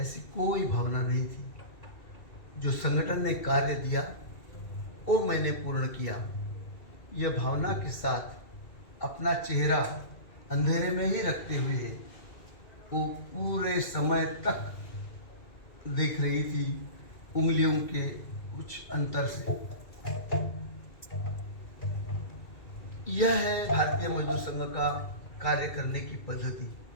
कोई भावना नहीं थी। जो संगठन ने कार्य दिया वो मैंने पूर्ण किया, यह भावना के साथ अपना चेहरा अंधेरे में ही रखते हुए वो पूरे समय तक देख रही थी उंगलियों के कुछ अंतर से। यह है भारतीय मजदूर संघ का कार्य करने की पद्धति,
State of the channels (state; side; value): late; right; 2.4 ms